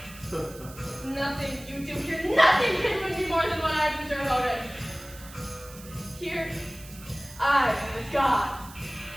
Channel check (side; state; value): right; noise; hiss, 18 dB below the sound